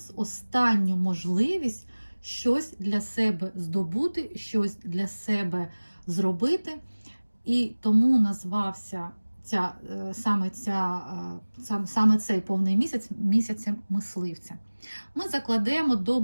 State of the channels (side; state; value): both; inverted; correlation -1.00